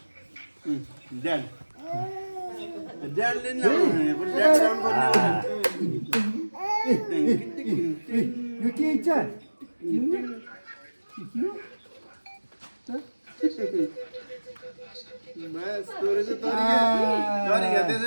ड्याड ड्याडले नि ड्याड ल्याउनु यो के इच्छा बस तोरे चाहिँ तरिका त्यसो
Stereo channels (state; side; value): inverted; both; correlation -1.00